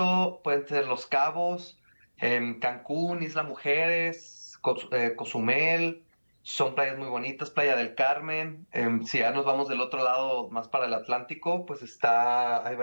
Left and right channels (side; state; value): both; inverted; correlation -1.00